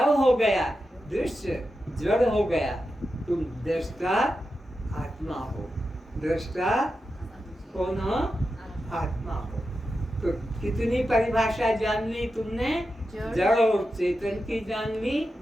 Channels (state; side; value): normal; both; correlation 0.90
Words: हो गया, दृश्य जड़ हो गया। तुम दृष्टा आत्मा हो। दृष्टा कौन हो? आत्मा हो। तो कितनी परिभाषा जान ली तुमने? जड़ और चेतन की जान ली,